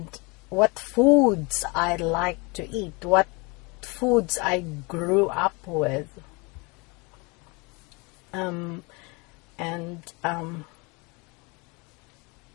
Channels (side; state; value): right; quieter; 28.7 dB